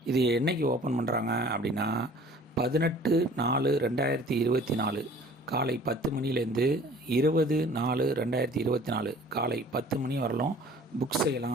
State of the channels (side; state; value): both; normal; correlation 0.50